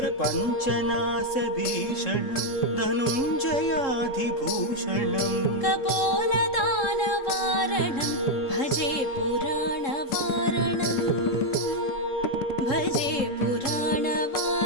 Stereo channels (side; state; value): right; late; 3.7 ms